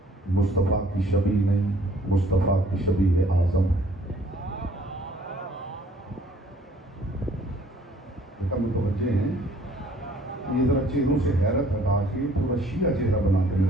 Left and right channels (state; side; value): normal; both; correlation 0.58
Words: मुस्तफ़ा की शबी नहीं, मुस्तफ़ा की शबी है आज़म है। मुतवज्जे हैं, ये जरा चेहरों से हैरत हटा के थोड़ा शिया चेहरा बना के